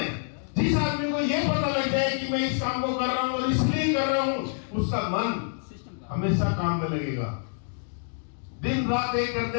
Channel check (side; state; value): right; silent; digital silence